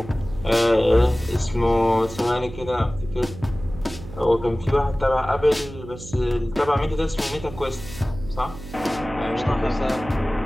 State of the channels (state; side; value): noise; right; hum, 14 dB below the sound